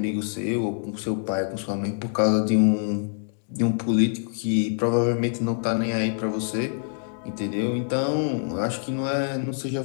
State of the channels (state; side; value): silent; right; digital silence